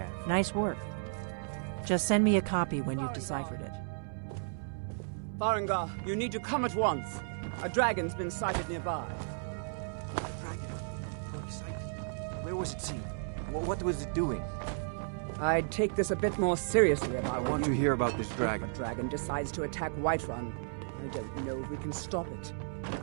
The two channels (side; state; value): left; silent; 55 dB below the other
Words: Nice work. Just send me a copy when you've deciphered it. Farengar, you need to come at once. A dragon's been sighted nearby. A dragon? How exciting. Where was it seen? What was it doing? I'd take this a bit more seriously if I were want you. to hear about this dragon. If a dragon decides to attack Whiterun, I don't know if we can stop it.